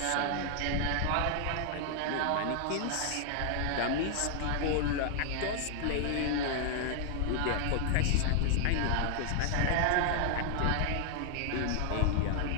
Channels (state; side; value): different; both; correlation 0.00